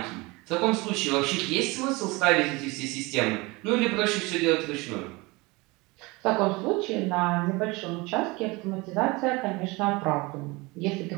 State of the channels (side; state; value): left; quieter; 24.3 dB